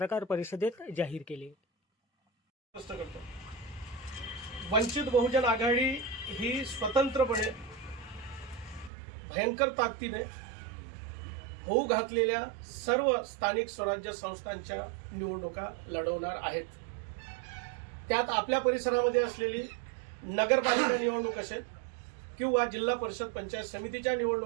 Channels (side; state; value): left; drops out; at 8.9 s